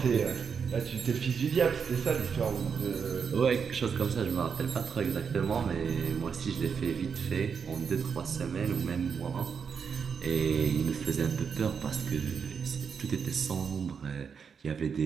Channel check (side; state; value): left; quieter; 6.4 dB